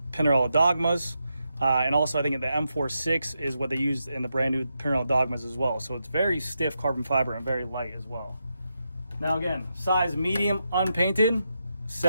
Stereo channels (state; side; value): inverted; both; correlation -0.85